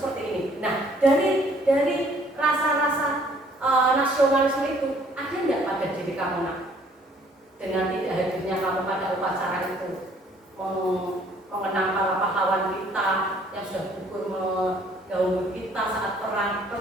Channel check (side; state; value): both; normal; correlation 0.60